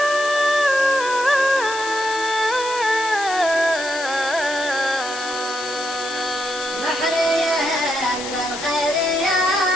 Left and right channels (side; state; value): left; noise; hiss, 9 dB below the sound